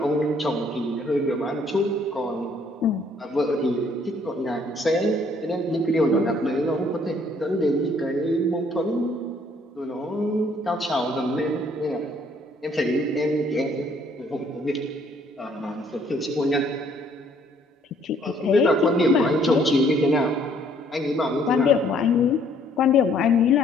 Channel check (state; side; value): normal; both; correlation 0.63